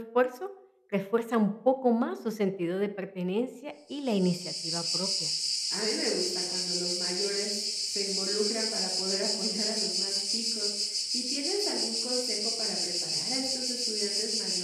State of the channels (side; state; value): both; identical; correlation 1.00